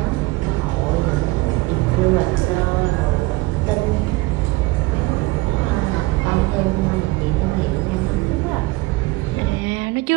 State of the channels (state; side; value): quieter; left; 21.6 dB